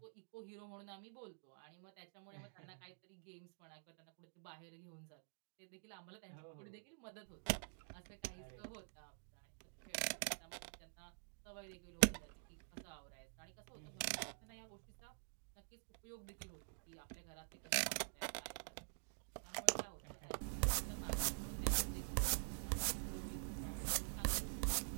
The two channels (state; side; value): silent; left; digital silence